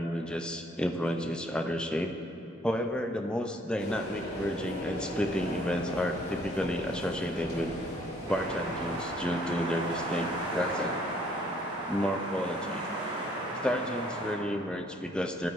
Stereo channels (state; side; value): normal; both; correlation 0.63